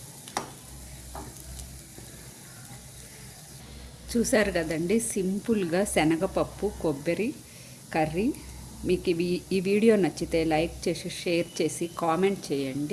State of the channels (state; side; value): identical; both; correlation 1.00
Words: చూసారు కదండి, సింపుల్గా శనగపప్పు కొబ్బరి కర్రీ. మీకు ఈ వీడియో నచ్చితే లైక్ చేసి, షేర్ చేసి, కామెంట్